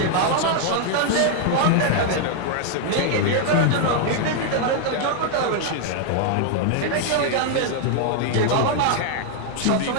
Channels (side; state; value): both; different; correlation 0.00